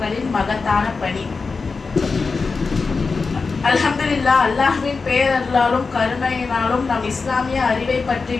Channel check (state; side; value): quieter; right; 4.5 dB